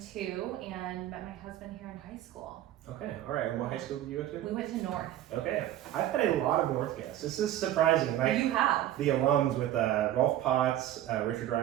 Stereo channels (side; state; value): left; quieter; 12.7 dB